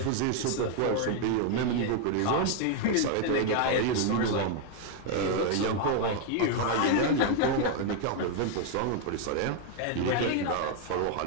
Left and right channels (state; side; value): different; both; correlation 0.00